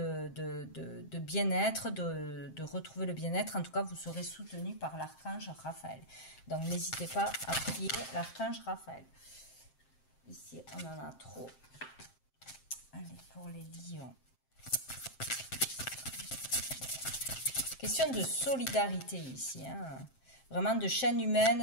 bien-être, de retrouver le bien-être. En tout cas, vous serez soutenu par l'archange Raphaël. Donc, n'hésitez pas à prier l'archange Raphaël. Ici, on en a trop. Allez, pour les lions. Question de solidarité ici, hein. Vraiment de chaîne humaine,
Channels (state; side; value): late; right; 7.6 ms